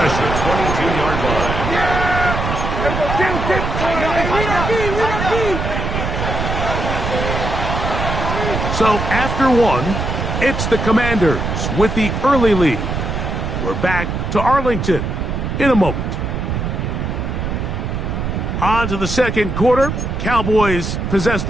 22-yard line. So after one, it's the Commanders with the early lead. We're back to Arlington in a moment. On to the second quarter. Cowboys possess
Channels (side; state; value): right; noise; rumble, 3 dB below the sound